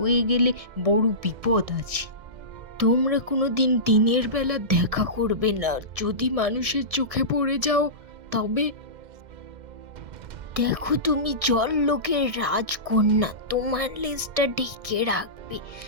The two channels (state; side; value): late; left; 1.6 ms